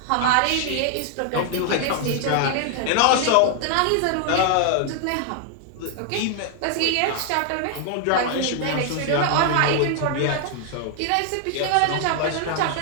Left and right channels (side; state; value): both; different; correlation 0.00